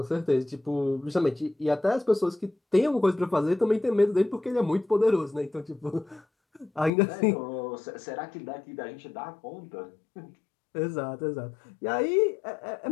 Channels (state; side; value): drops out; right; at 6.9 s